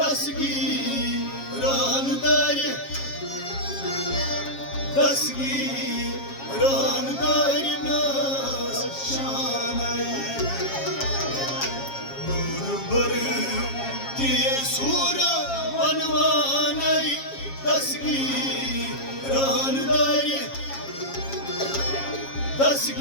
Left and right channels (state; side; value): late; right; 7.3 ms